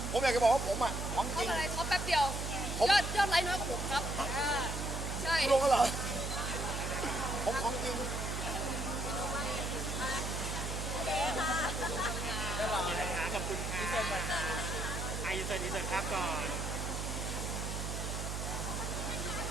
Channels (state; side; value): noise; right; hum, 3 dB below the sound